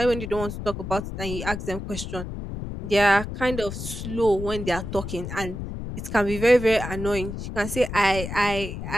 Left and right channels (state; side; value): noise; left; rumble, 7 dB below the sound